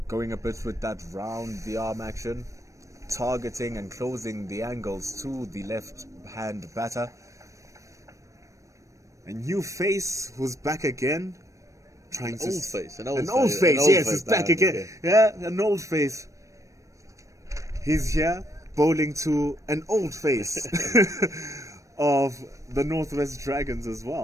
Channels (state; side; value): late; left; 0.15 ms